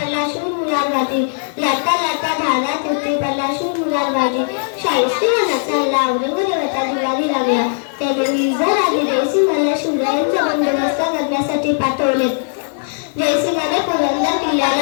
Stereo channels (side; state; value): right; silent; 56 dB below the other